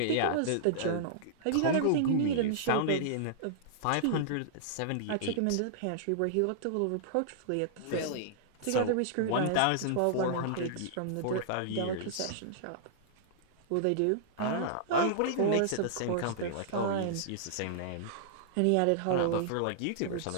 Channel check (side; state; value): both; different; correlation -0.02